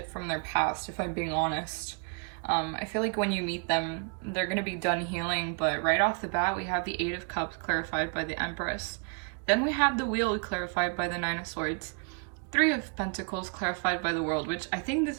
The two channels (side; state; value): left; quieter; 35.9 dB